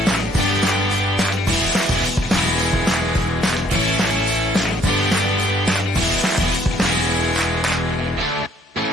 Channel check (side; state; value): both; normal; correlation 0.65